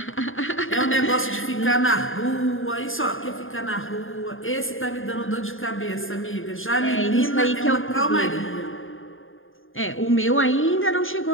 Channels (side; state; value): right; late; 0.59 ms